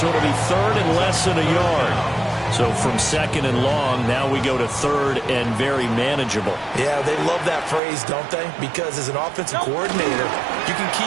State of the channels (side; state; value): left; drops out; at 7.8 s